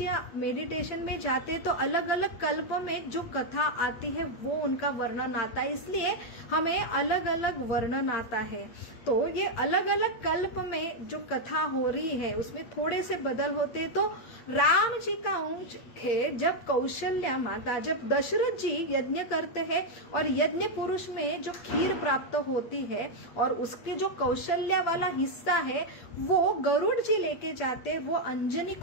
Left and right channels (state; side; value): late; right; 8.6 ms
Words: मेडिटेशन में जाते तो अलग अलग कल्प में जो कथा आती है वो उनका वर्णन आता है, इसलिए हमें अलग अलग वर्णन आता है। तो ये अलग अलग कल्प में जो कथा हो रही है उसमें थोड़े से बदल होते। तो राम जी का अंश है जब कौशल्या माता, जब दशरथ जी यज्ञ करते हैं और यज्ञ पुरुष में जो खीर प्राप्त होती है और उसके जो कौशल्या वाला हिस्सा है वो गरुड़ जी लेके जाते, वो अंजनी